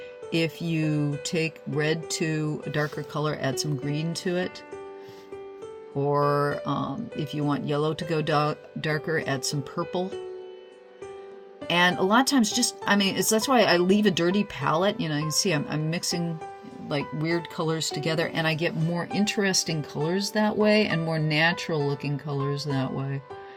if you take red to a darker color, add some green to it. Or if you want yellow to go darker, add some purple. And a lot of times that's why I leave a dirty palette. You can see I'm mixing like weird colors together, and I get more interesting colors that way and more natural looking colors that way.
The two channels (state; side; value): identical; both; correlation 1.00